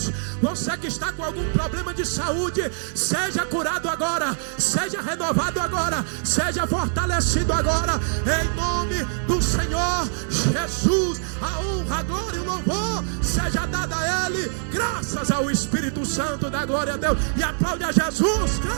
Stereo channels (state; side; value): silent; left; digital silence